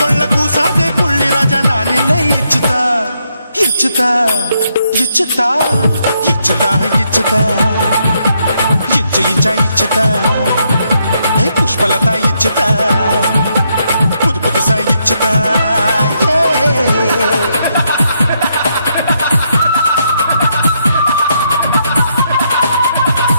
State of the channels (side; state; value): both; inverted; correlation -0.77